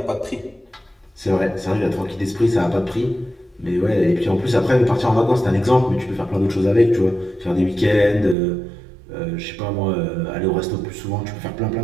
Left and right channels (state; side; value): drops out; left; at 8.3 s